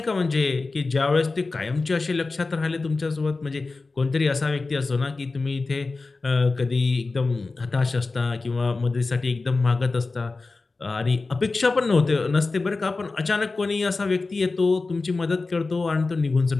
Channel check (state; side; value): quieter; right; 3.7 dB